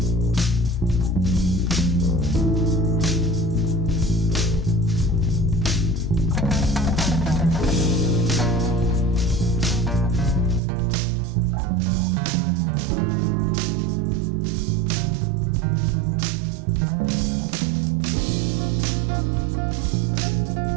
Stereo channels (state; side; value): drops out; left; at 10.6 s